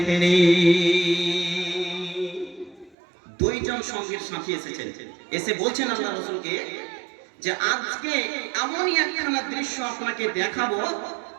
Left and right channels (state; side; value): drops out; left; at 3.0 s